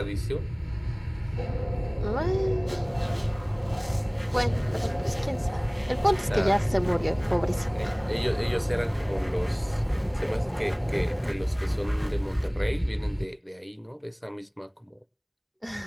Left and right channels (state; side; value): identical; both; correlation 1.00